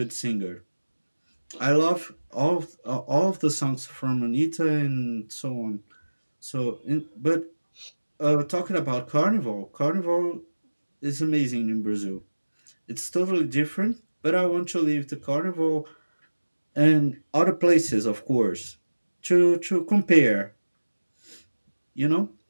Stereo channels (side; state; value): both; inverted; correlation -1.00